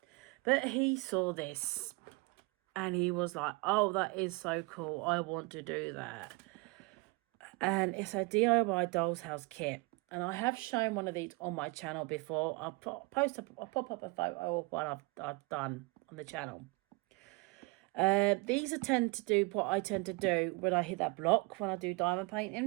But he saw this, and he was like, oh, that is so cool, I want to do that. And it's a DIY Dolls House kit. And I have shown one of these on my channel before. I'll pop up a photo of one I've done on the channel. These tend to do what I tend to do when I hit that block, when I do diamond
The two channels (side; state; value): left; quieter; 26.3 dB